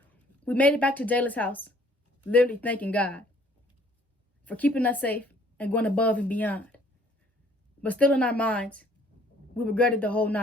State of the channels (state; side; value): normal; both; correlation 0.58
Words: we made it back to Jayla's house, literally thanking God for keeping us safe and going above and beyond. But still in our minds, we regretted the whole